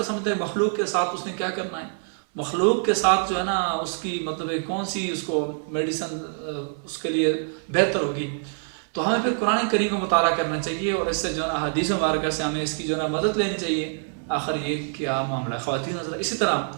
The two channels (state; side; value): silent; left; 62 dB below the other